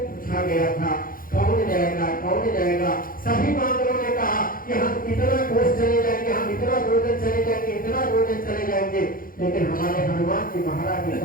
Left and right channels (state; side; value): late; right; 0.41 ms